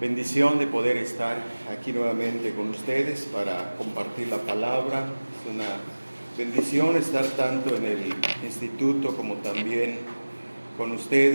bendición de poder estar aquí nuevamente con ustedes para compartir la palabra. Es una bendición estar tanto en el instituto como también con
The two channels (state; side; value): inverted; both; correlation -1.00